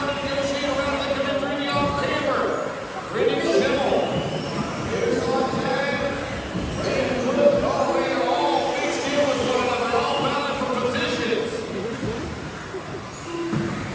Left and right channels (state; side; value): identical; both; correlation 1.00